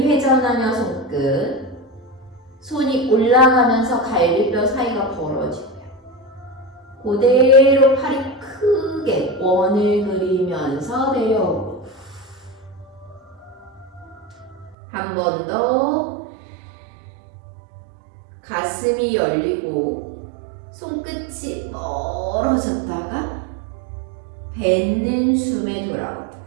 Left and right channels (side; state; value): left; drops out; at 14.8 s